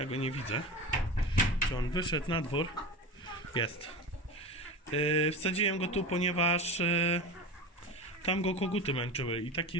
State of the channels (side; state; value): both; normal; correlation 0.28